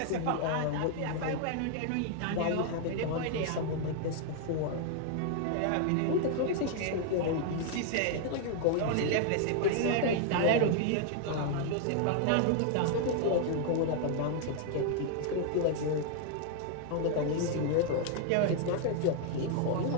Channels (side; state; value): both; different; correlation 0.00